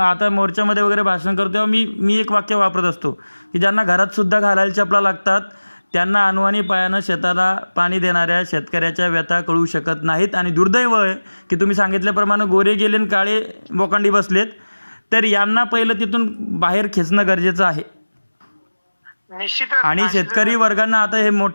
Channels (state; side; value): inverted; both; correlation -1.00